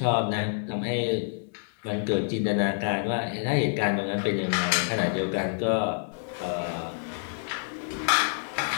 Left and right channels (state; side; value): silent; right; digital silence